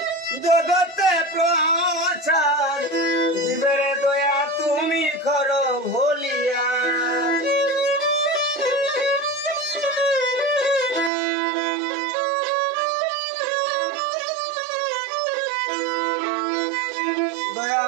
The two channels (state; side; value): drops out; left; at 11.1 s